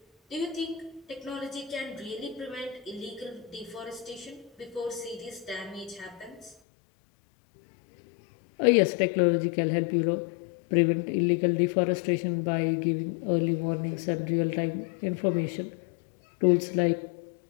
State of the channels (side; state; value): right; drops out; at 6.6 s